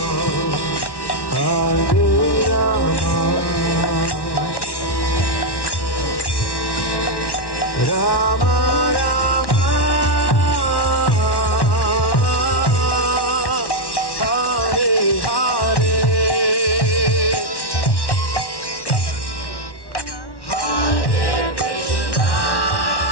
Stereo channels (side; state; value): right; late; 1.1 ms